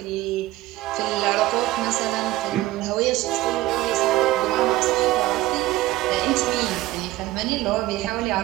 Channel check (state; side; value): quieter; left; 16.9 dB